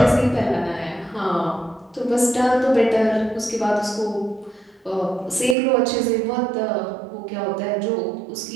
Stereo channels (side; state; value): left; drops out; at 5.6 s